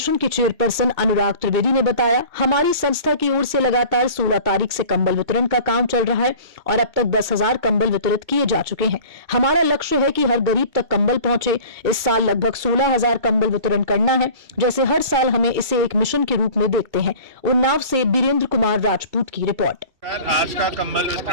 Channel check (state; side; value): late; left; 2.3 ms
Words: के चेयरपर्सन अनुराग त्रिवेदी ने बताया, हमारी संस्था की ओर से लगातार 16 तारीख से कंबल वितरण का काम चल रहा है और अब तक 10,000 कंबल वितरित किए जा चुके हैं। हमारा लक्ष्य है कि हर गरीब तक कंबल पहुंचे। इस साल लगभग 16,000 कंबल वितरण करना है। जैसे हर साल हमें इसे एक मिशन के रूप में देखते हैं। उन्नाव से बीरेंद्र कुमार राजपूत की रिपोर्ट। आज का कंबल